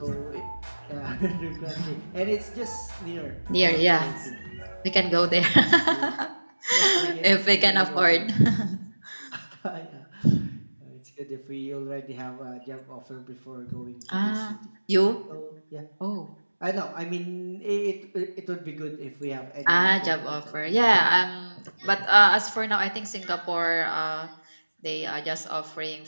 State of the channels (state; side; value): inverted; both; correlation -1.00